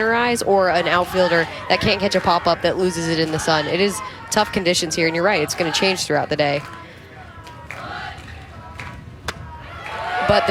eyes, or an outfielder that can't catch a pop-up that loses it in the sun. It is tough conditions here, and you're right, it's going to change throughout the day. But the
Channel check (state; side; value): identical; both; correlation 1.00